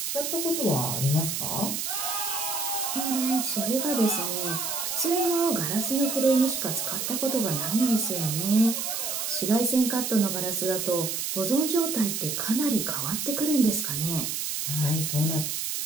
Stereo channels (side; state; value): right; noise; hiss, 2 dB below the sound